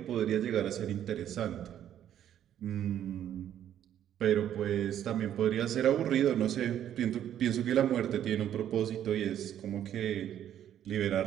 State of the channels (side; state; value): left; quieter; 10.6 dB